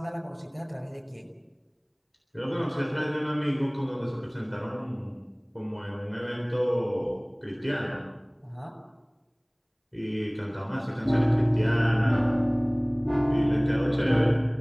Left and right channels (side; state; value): both; identical; correlation 1.00